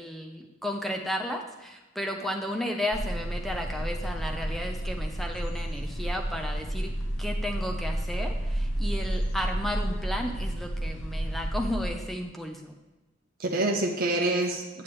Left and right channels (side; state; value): both; normal; correlation 0.74